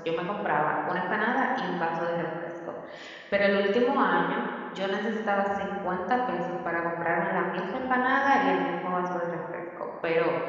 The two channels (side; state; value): both; identical; correlation 1.00